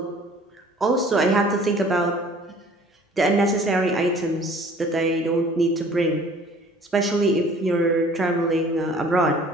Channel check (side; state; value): both; normal; correlation 0.51